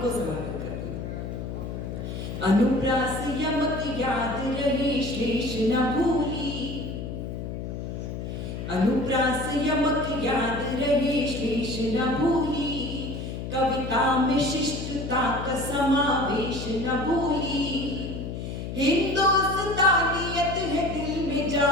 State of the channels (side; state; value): left; noise; hum, 6 dB below the sound